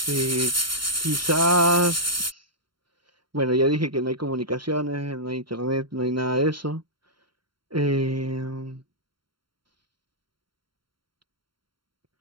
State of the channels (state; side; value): late; left; 0.73 ms